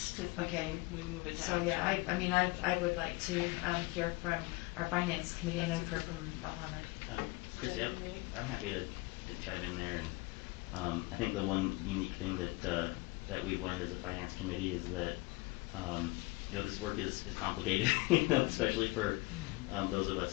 if we move it to So action. yeah, I mean, I would like to hear from our finance committee. I know we've heard from Mohammed. Christy, I'm happy to chime in there, and I think the one unique thing that we've learned as a finance committee is that you know, this work is complicated, you know, especially for those of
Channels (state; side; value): quieter; right; 23.5 dB